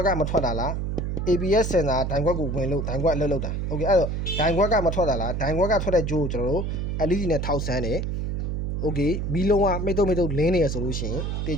်ကမထွက်တာလား ABS စင်တာဒိုင်ခွက်ကိုဝင်လို့ဒိုင်ခွက်အလုပ်လုပ်တာ Okay အဲ့တော့ဒိုင်ခွက်ကမထွက်တာလားဒိုင်ခွက်ကထွက်တဲ့ဂျိုးကိုကျွန်တော်တို့ LED နဲ့ထောက်ဆန်းတယ် Okay မီးလုံးကမိတ်တုံလင်းနေရဆိုလို့ရှိရင်တ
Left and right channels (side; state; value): right; noise; hum, 2 dB below the sound